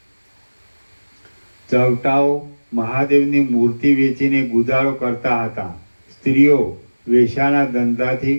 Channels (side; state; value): both; inverted; correlation -1.00